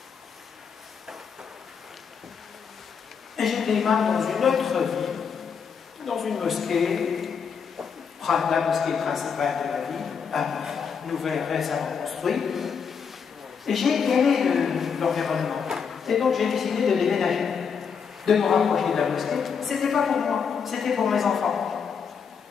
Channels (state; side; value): quieter; right; 6.4 dB